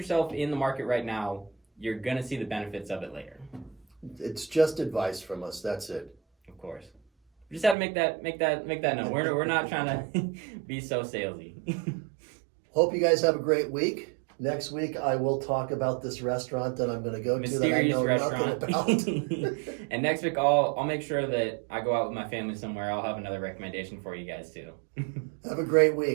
in the market right now, you're going to see the benefits of it later. It's just advice from us. That's it. Of course. We just had to make that known. We're not trying to be so salesy. Hope you guys have a great week. Next week I will talk about this restaurant that I'm going to go to that I know nothing about. And next week I'll make sure that I go out with my family somewhere. I'll have another recommendation for you guys too. Have a great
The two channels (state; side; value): drops out; left; at 7.8 s